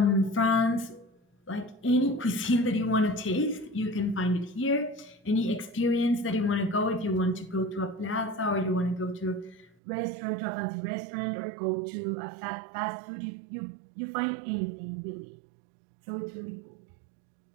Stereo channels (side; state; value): left; drops out; at 9.8 s